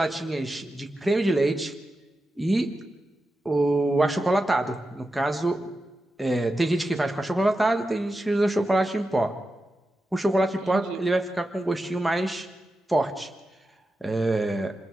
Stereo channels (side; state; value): both; normal; correlation 0.91